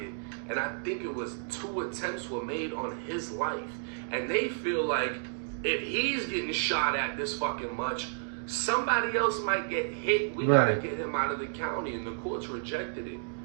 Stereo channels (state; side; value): silent; left; digital silence